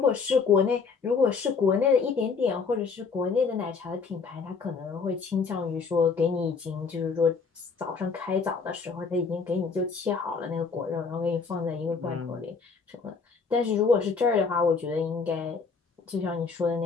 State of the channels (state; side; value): quieter; right; 5.1 dB